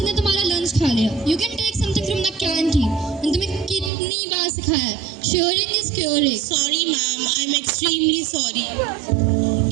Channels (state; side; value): drops out; left; at 3.9 s